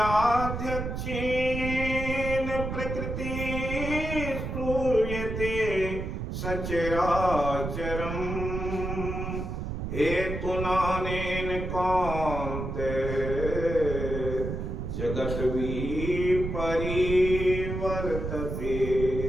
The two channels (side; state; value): right; noise; rumble, 4 dB below the sound